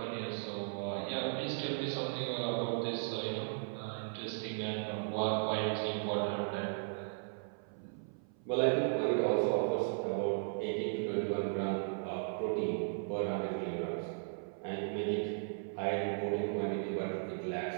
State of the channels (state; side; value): silent; left; 53 dB below the other